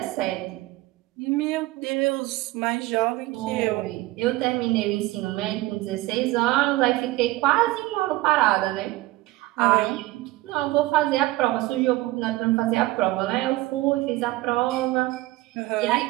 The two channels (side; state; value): left; quieter; 18.6 dB